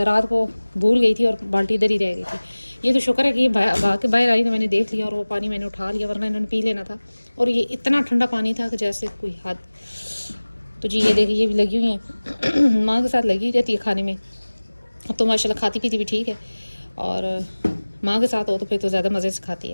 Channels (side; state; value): both; inverted; correlation -1.00